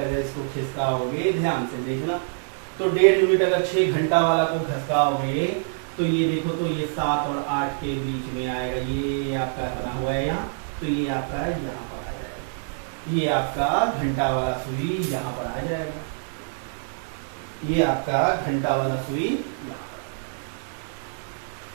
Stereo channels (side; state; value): left; silent; 60 dB below the other